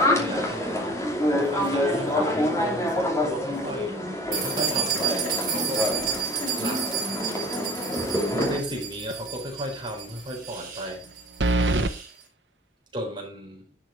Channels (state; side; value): normal; both; correlation 0.45